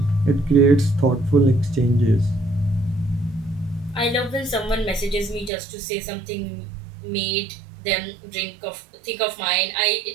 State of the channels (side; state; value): left; drops out; at 5.5 s